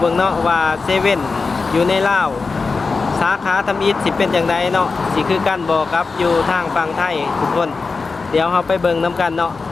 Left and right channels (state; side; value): quieter; right; 4.3 dB